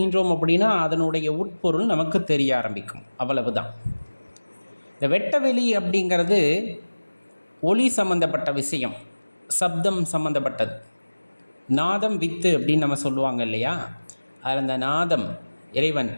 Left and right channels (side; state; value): both; inverted; correlation -1.00